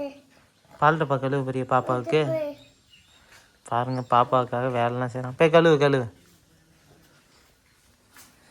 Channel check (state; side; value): identical; both; correlation 1.00